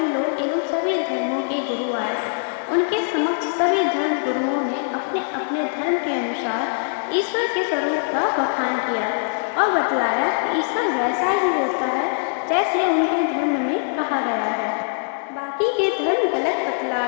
लोग एवं सभी धर्मों के गुरु आए। उनके समक्ष सभी धर्म गुरुओं ने अपने अपने धर्म के अनुसार ईश्वर के स्वरूप का बखान किया और बतलाया कि ईश्वर वैसा ही होता है जैसे उनके धर्म में कहा गया है। बाकी के धर्म गलत बतला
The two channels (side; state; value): right; silent; digital silence